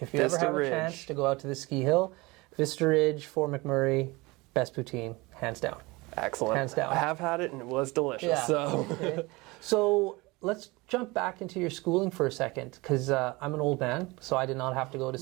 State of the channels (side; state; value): left; quieter; 23.4 dB